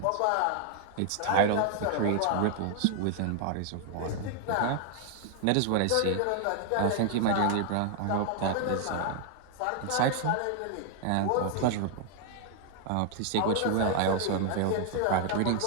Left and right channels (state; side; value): different; both; correlation 0.00